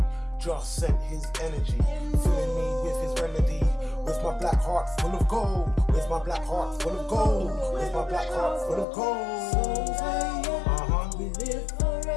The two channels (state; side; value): drops out; right; at 8.8 s